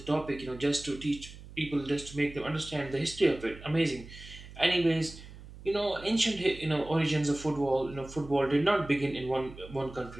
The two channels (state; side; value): noise; right; hum, 16 dB below the sound